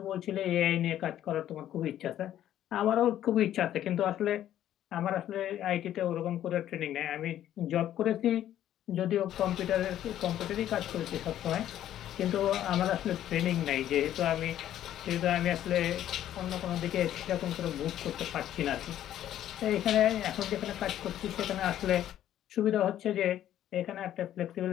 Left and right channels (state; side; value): quieter; right; 11.8 dB